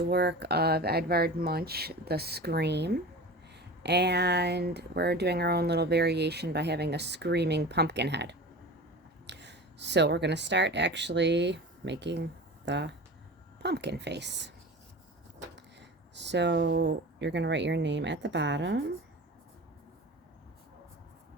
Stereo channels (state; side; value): normal; both; correlation 0.33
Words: work of Edvard Munch, The Scream. And we're doing our own little variation by having a screaming pumpkin head. So we're going to start actually making the pumpkin face. So you're going to write your name at the bottom.